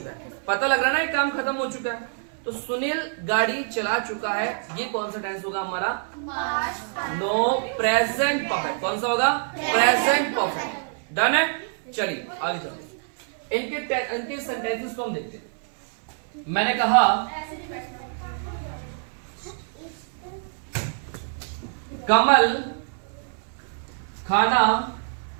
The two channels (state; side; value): silent; left; 58 dB below the other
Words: है। पता लग रहा है ना ये काम खत्म हो चुका है, तो सुनील गाड़ी चला चुका है, ये कौन सा टेंस होगा हमारा? No, present perfect. कौन सा होगा? Present perfect. डन है। चलिए आगे चलते हैं। इनके सेंटेंसेस को हम देखते हैं। मैंने कहा कमल खाना